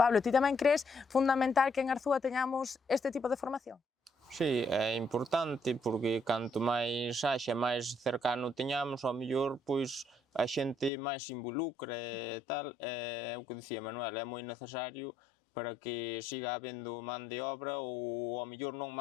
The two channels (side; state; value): right; drops out; at 10.9 s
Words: ti tamén crees fundamental que en Arzúa teñamos este tipo de formación? Sí, é importante porque canto máis haxa, máis cercano teñamos, ao mellor, pois a xente máis se involucra e tal, é o que dicía Manuel, é moi necesario para que siga habendo man de obra ou ao mellor non